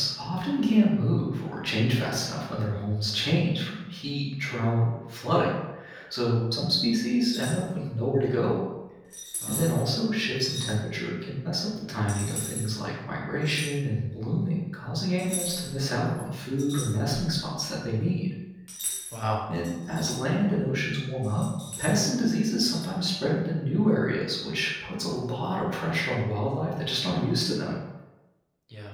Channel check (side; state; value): both; identical; correlation 1.00